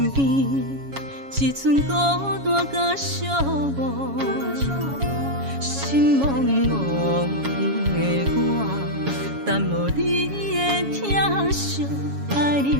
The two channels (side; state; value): left; late; 7.2 ms